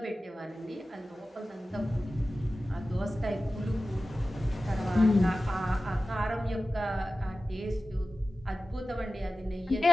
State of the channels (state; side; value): normal; both; correlation 0.95